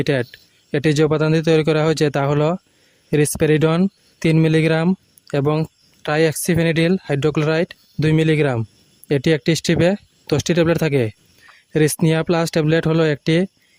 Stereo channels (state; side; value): identical; both; correlation 1.00